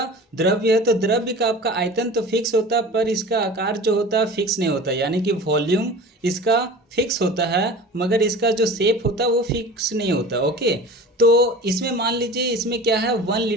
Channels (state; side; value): normal; both; correlation 0.37